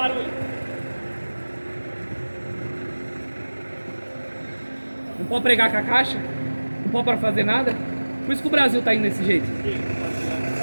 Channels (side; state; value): both; inverted; correlation -1.00